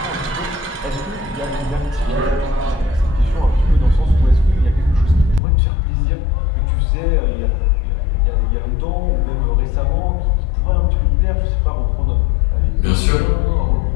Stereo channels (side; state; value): right; drops out; at 5.4 s